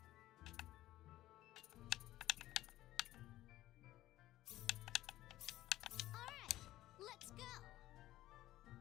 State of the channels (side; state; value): right; quieter; 15.2 dB